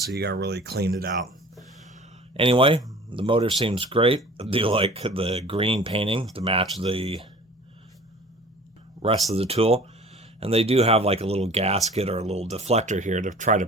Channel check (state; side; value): normal; both; correlation 0.45